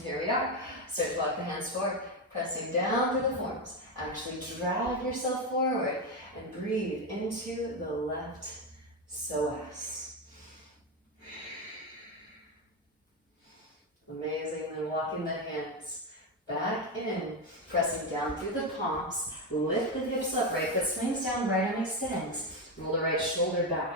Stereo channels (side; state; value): both; normal; correlation 0.10